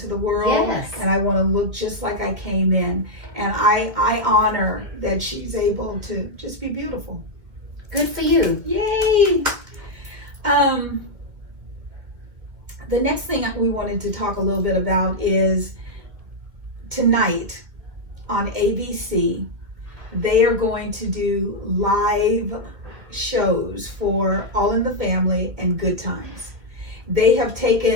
the world. Yes. And I want to look just like I came in. And I honor that she's able to just be beautiful. Good for you. Yay! The next thing we wanted to talk a little bit about is tonight on ABC, they are going to do live shows for All in the Family and Good Times. They have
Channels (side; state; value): left; late; 2.1 ms